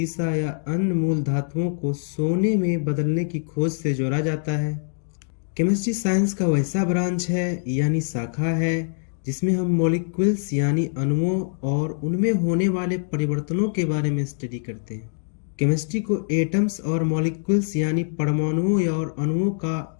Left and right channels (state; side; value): silent; right; digital silence